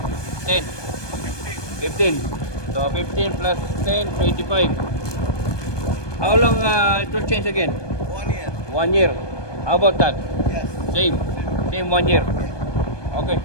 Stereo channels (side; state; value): right; late; 1.2 ms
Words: 10. 15. So 15 plus 10, 25. How long it will change again? 1 year. 1 year. How about that? Yes. Same. Same 1 year. Okay.